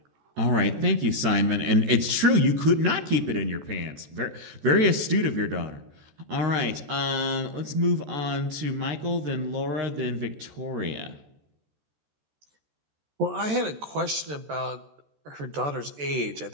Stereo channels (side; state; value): left; late; 14 ms